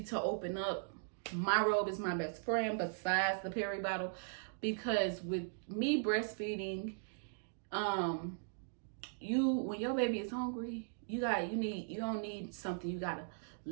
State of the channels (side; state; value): left; silent; digital silence